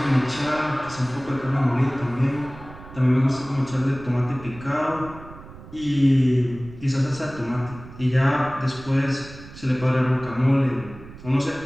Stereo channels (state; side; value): noise; right; rumble, 17 dB below the sound